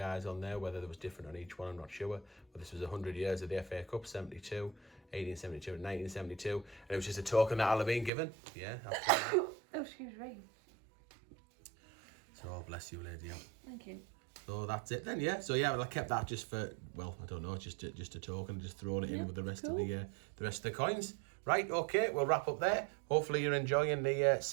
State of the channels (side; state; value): left; drops out; at 8.1 s